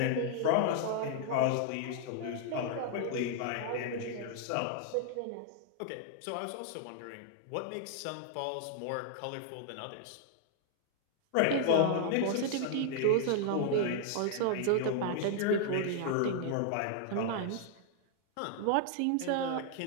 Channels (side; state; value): both; different; correlation -0.01